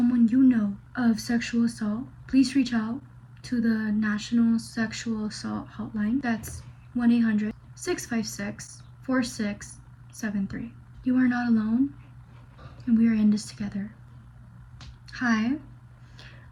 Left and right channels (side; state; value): both; identical; correlation 1.00